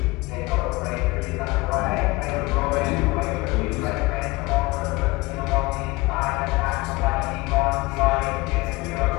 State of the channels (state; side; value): quieter; right; 22.3 dB